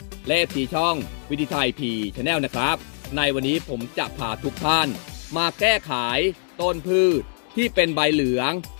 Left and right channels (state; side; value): silent; right; digital silence